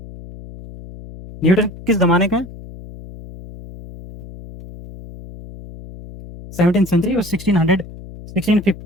न्यूटन किस जमाने का है? 17th सेंचुरी और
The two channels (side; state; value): left; noise; hum, 16 dB below the sound